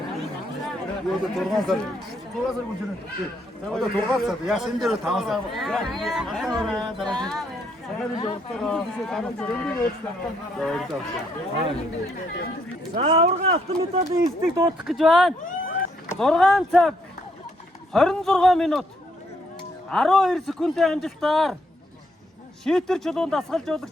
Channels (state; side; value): normal; both; correlation 0.72